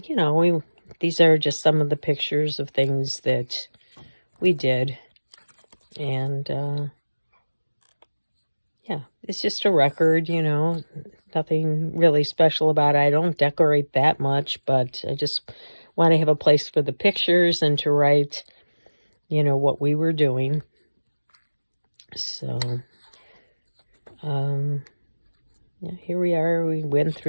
these are just some of the pictures of things that we did. And, yeah, it's just a record, nothing really special about it. I don't decorate that much, but I just want to have a place for the pictures and to write, what we were doing. So, yeah, here we are. We went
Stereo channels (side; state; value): both; inverted; correlation -1.00